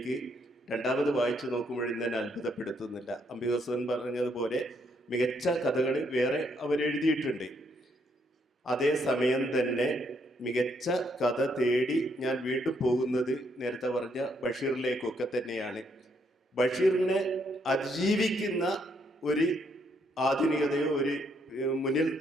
രണ്ടാമത് വായിച്ചു നോക്കുമ്പോഴും എന്നെ അത്ഭുതപ്പെടുത്തുന്നില്ല. അംബികാസുധൻ പറഞ്ഞതുപോലെ മികച്ച കഥകൾ വേറെ അവരെഴുതിയിട്ടുണ്ട്. അതേസമയം തന്നെ മികച്ച കഥ തേടി ഞാൻ വീണ്ടും പോകുന്നത് നേരത്തെ പറഞ്ഞ ബഷീറിലേക്കൊക്കെ തന്നെയാണ്. ബഷീറിനെ അതിജീവിക്കുന്ന ഒരു ആധുനികതയോ ഒരു മുന്നിൽ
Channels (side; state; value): both; normal; correlation 0.73